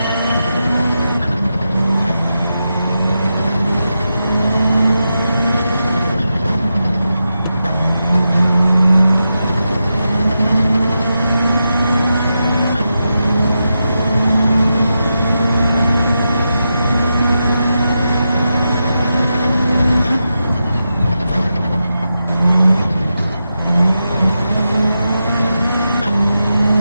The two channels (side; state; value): both; inverted; correlation -0.88